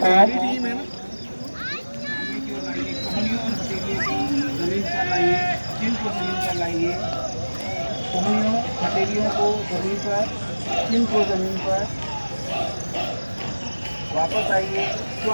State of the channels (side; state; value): both; inverted; correlation -1.00